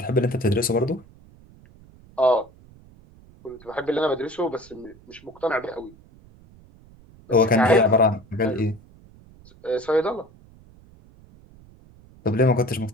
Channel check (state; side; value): noise; right; rumble, 25 dB below the sound